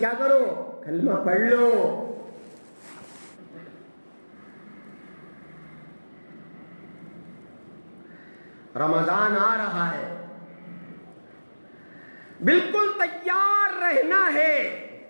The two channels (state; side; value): inverted; both; correlation -1.00